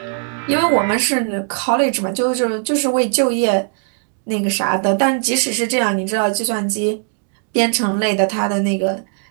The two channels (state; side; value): silent; left; 58 dB below the other